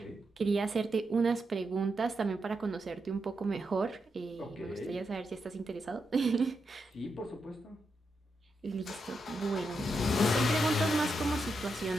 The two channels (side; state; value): both; normal; correlation 0.85